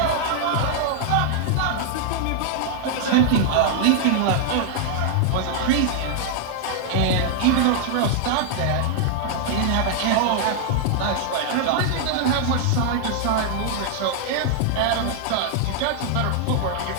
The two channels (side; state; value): both; different; correlation 0.00